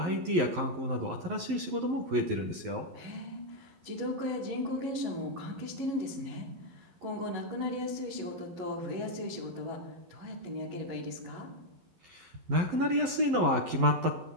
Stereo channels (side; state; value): left; late; 11 ms